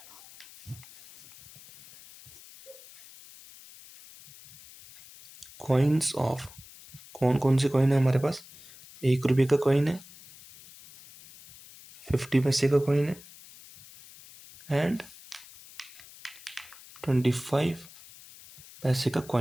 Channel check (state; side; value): noise; left; hiss, 20 dB below the sound